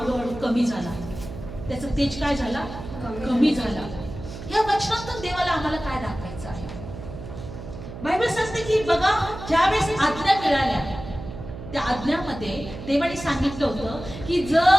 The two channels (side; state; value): right; noise; hum, 11 dB below the sound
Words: कमी झाला. त्याचा तेज काय झाला? कमी झाला. या वचनातून देवाला आम्हाला काय दाखवायचं आहे? बायबल सांगते की बघा, ज्यावेळेस आज्ञा मिळाल्या त्या आज्ञामध्ये देवाने सांगितलं होतं की